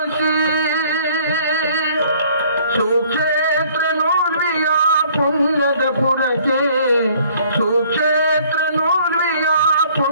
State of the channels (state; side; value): inverted; both; correlation -0.58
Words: ಸುಕ್ಷೇತ್ರ ನೂರ್ವಿಯ ಪುಣ್ಯದ ಪುರಕ್ಕೆ, ಸುಕ್ಷೇತ್ರ ನೂರ್ವಿಯ